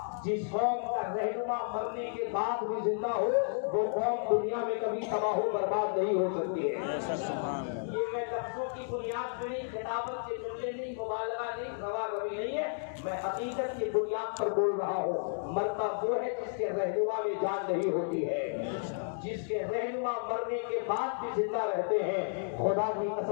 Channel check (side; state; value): right; silent; digital silence